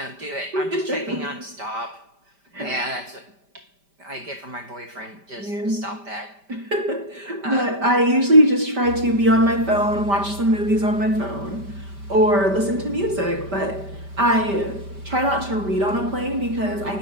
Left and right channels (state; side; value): late; left; 5.1 ms